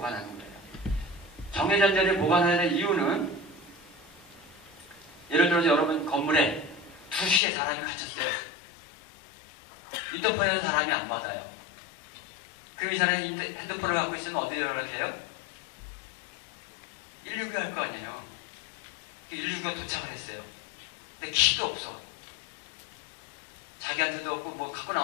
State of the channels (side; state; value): right; drops out; at 7.4 s